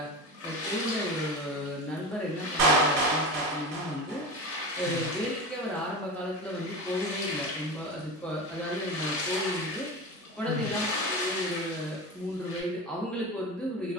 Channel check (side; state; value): both; normal; correlation 0.26